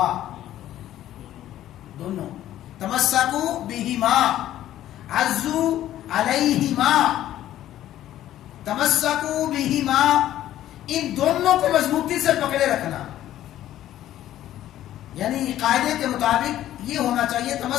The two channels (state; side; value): quieter; right; 12.9 dB